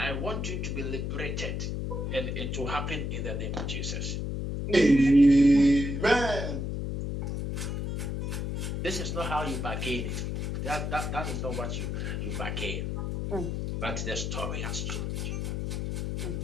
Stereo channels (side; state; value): left; noise; hum, 2 dB below the sound